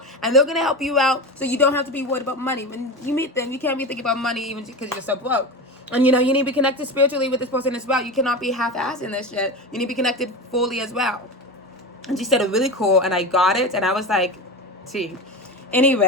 And they're going to help you out so you don't have to be worried about money. When you meet them, you can't be thinking about money even because you're so broke. And, you need to be connected spiritually with this person as well. You cannot be half-assed in this shit. You need to be connected fully as well. And she said it really cool, and I got it. And I was like, see.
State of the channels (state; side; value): normal; both; correlation 0.24